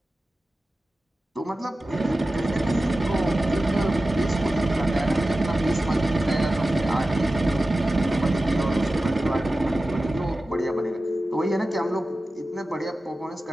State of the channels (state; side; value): normal; both; correlation 0.95